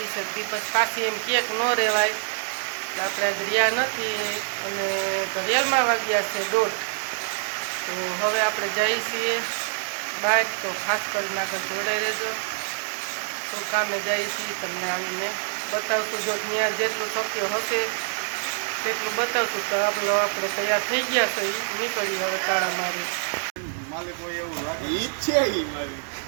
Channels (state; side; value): silent; left; digital silence